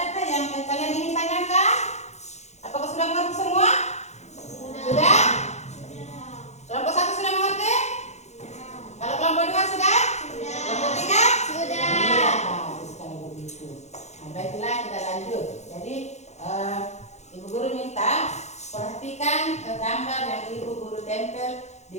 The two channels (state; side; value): late; right; 0.33 ms